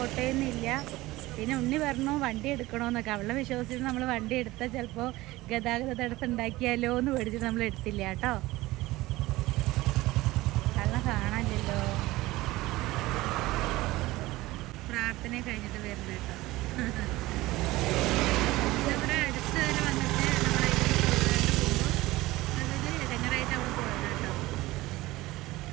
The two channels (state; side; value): quieter; left; 18.8 dB